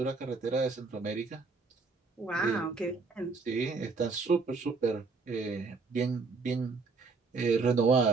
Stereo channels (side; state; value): left; quieter; 4.3 dB